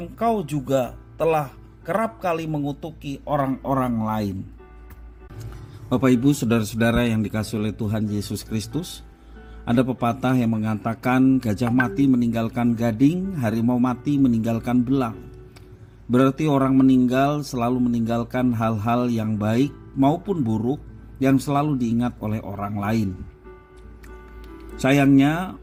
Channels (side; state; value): both; identical; correlation 1.00